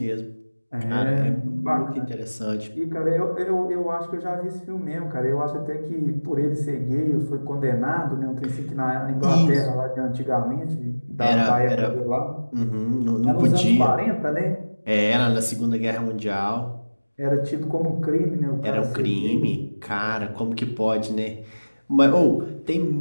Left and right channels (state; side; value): inverted; both; correlation -1.00